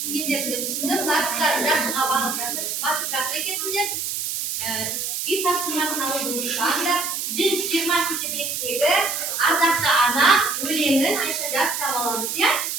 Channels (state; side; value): noise; right; hiss, 3 dB below the sound